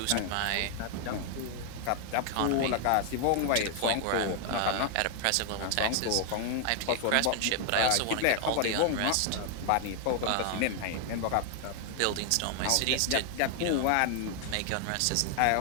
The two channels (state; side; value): different; both; correlation 0.00